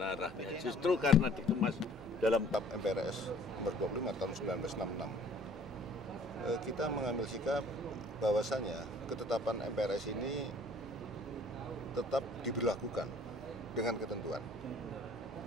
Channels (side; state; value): both; normal; correlation 0.54